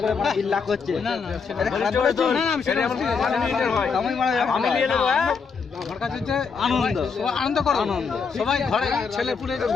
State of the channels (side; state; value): right; quieter; 5.5 dB